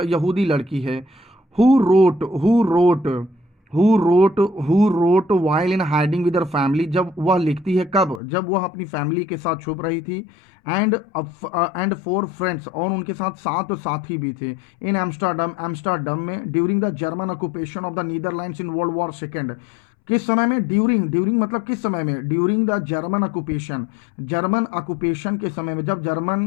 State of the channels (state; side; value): drops out; right; at 8.2 s